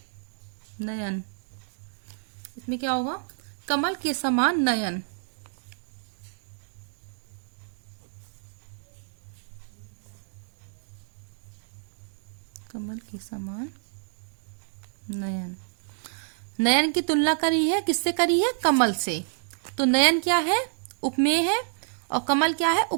नयन, इसमें क्या होगा? कमल के समान नयन। कमल के समान नयन। नयन की तुलना करी है, किससे करी है? कमल से। तो नयन क्या है? उपमेय है, और कमल क्या है?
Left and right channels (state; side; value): silent; left; digital silence